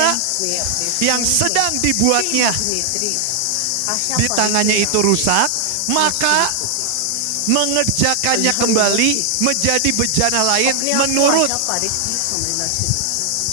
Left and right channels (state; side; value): different; both; correlation 0.00